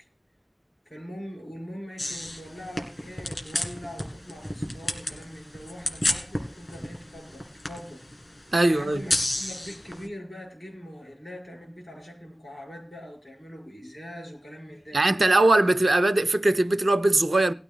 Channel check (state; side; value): normal; both; correlation 0.96